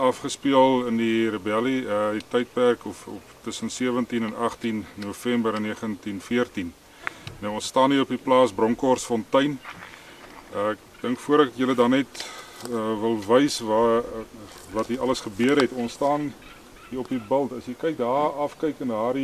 in die rebellie, die tydperk of tussen 17 en 18 November in 1914. Nou ons staan hier op die plaas Bronkhorstfontein. Ek dink voor ek julle dan net wil wys wat hier alles gebeur het. Ons staan hier op die bult. As jy kyk daar afkyk en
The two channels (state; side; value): identical; both; correlation 1.00